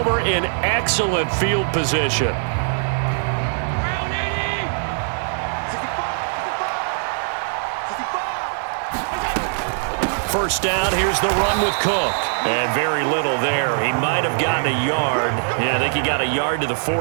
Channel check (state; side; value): silent; left; digital silence